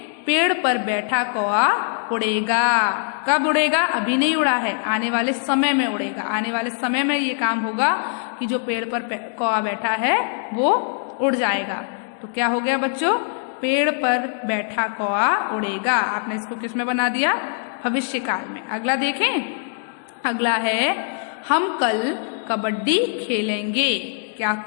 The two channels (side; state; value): right; silent; digital silence